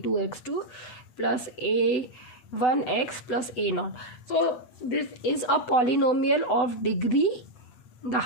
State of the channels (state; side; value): late; right; 8.0 ms